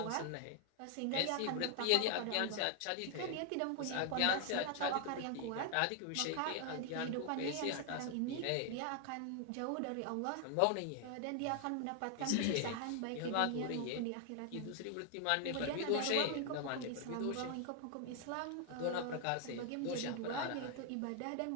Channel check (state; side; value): different; both; correlation 0.00